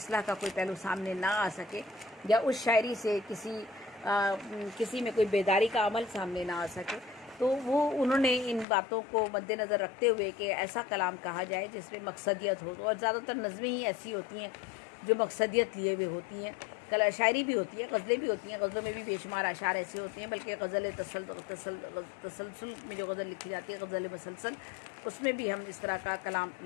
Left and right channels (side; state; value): right; drops out; at 8.7 s